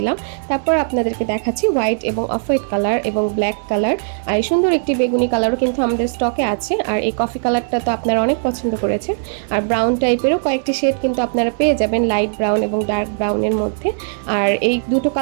তারপর আপনাদেরকে দেখাচ্ছি হোয়াইট এবং অফ হোয়াইট কালার এবং ব্ল্যাক কালার। আর এই সুন্দর একটি বেগুনি কালারও কিন্তু আমাদের স্টকে আছে। আর এই কফি কালারটা তো আপনারা অনেক পছন্দ করেছেন। আর ব্রাউন টাইপেরও কয়েকটি শেড কিন্তু আপনারা পেয়ে যাবেন, লাইট ব্রাউন এবং ডার্ক ব্রাউনের মধ্যে। আর এই দুটো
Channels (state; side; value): silent; left; digital silence